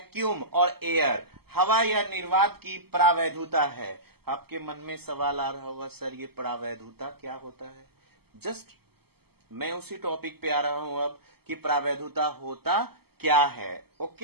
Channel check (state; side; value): late; left; 0.96 ms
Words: और एयर, हवा या निर्वात की प्रावैधुता है। आपके मन में सवाल आ रहा होगा, सर ये प्रावैधुता क्या होता है? जस्ट मैं उसी टॉपिक पे आ रहा हूं अब कि प्रावैधुता होता क्या है।